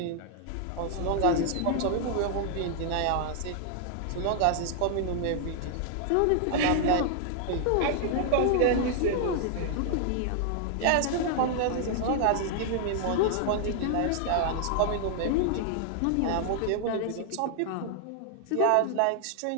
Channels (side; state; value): both; different; correlation 0.00